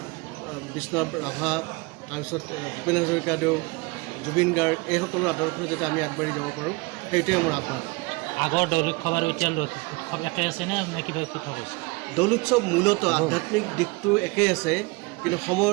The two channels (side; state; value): left; quieter; 25.9 dB